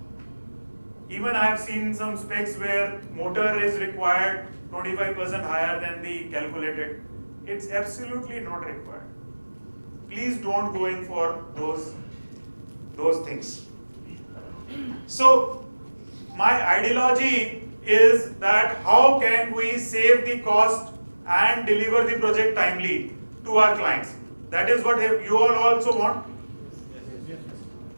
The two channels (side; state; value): both; inverted; correlation -1.00